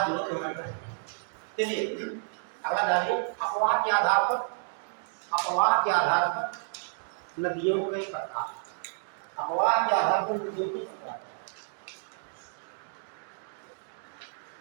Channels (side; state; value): left; silent; digital silence